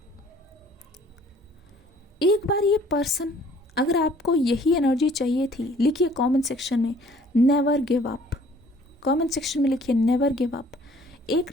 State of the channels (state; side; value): normal; both; correlation 0.56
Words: एक बार ये पर्सन, अगर आपको यही एनर्जी चाहिए थी, लिखिए कमेंट सेक्शन में never give up, comment section में लिखिए नेवर गिव अप। एक